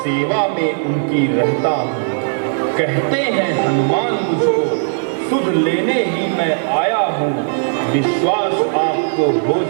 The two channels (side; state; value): left; silent; digital silence